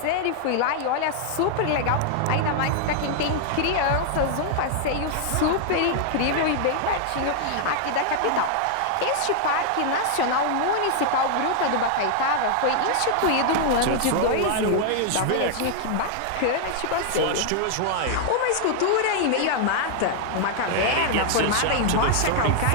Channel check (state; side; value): different; both; correlation -0.01